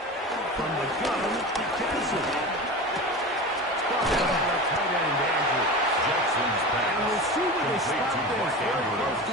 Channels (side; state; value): both; normal; correlation 0.29